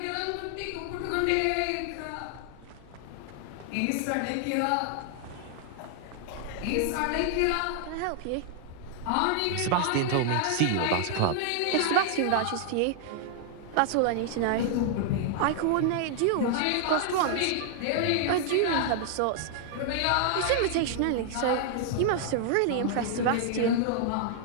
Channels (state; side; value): different; both; correlation 0.00